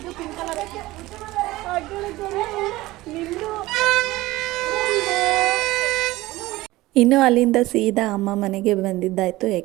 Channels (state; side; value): quieter; left; 18.4 dB